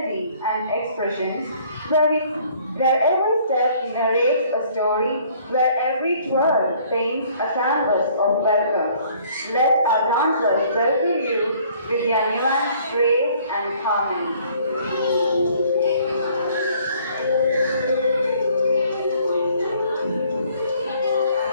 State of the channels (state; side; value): inverted; both; correlation -0.59